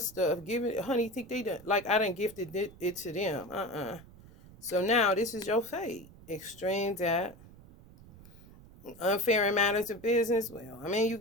Honey, think they done, like I done gifted it to them. So now this is your fate. Extreme that. Unfair in matters of business. Well, I mean, you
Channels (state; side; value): noise; right; rumble, 21 dB below the sound